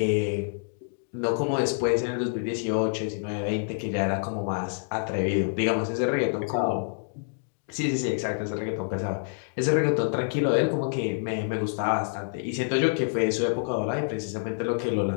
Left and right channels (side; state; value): right; silent; digital silence